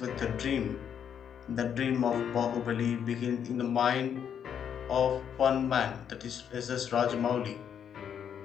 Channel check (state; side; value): quieter; right; 8.4 dB